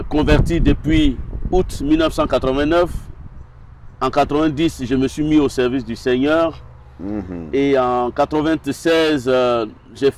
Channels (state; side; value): identical; both; correlation 1.00